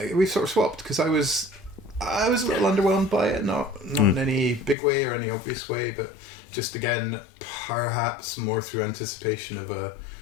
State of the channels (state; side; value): drops out; right; at 4.8 s